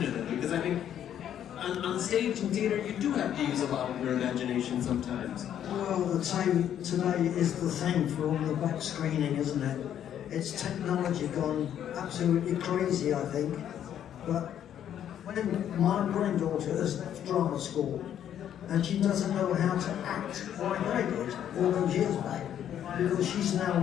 them? Because I think on stage in theatre you do have to use a lot of your imagination sometimes. Well, the time today is the thing for all the back screening, isn't it? It's technology gone absolutely crazy, I think. But when my granddaughter has left drama school and she doesn't know how to act like I did all those years back, because she's now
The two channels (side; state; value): right; quieter; 10.1 dB